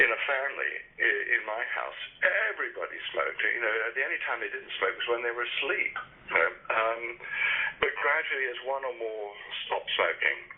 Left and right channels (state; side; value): identical; both; correlation 1.00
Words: a family, in my house, everybody smoked. You know, the only time they didn't smoke was when they were asleep. You know? But gradually, as one or more stopped smoking,